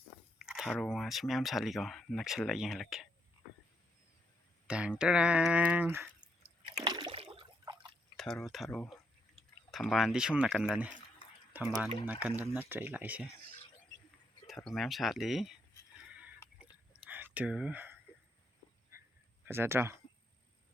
ꯊꯔꯣ ꯉꯥꯁꯤ ꯃꯌꯥꯝ ꯁꯥꯠꯂꯤꯀꯣ ꯅꯛꯁꯜꯂ ꯌꯦꯡꯍꯜꯂꯛꯀꯦ ꯇꯦꯡ ꯇꯔꯥꯡ ꯊꯔꯣ ꯊꯝꯕꯥꯜꯗꯤ ꯁꯣꯝ ꯅꯥꯀꯟꯗꯅꯤ ꯊꯝꯕꯥꯜ ꯅꯥꯀꯟꯗ ꯅꯠꯇ꯭ꯔꯦ ꯑꯩ ꯂꯥꯛꯏꯁꯦ ꯊꯔꯣ ꯃꯌꯥꯝ ꯁꯥꯠꯂꯤ ꯑꯗꯨ ꯐꯖꯗ꯭ꯔꯣ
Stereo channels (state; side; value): normal; both; correlation 0.77